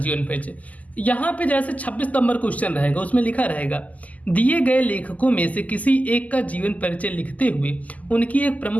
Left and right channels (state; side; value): late; right; 0.076 ms